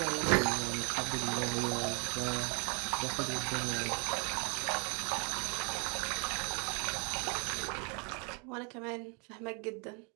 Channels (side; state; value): left; quieter; 34.1 dB